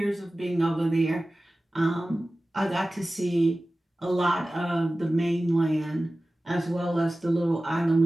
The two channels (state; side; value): normal; both; correlation 0.96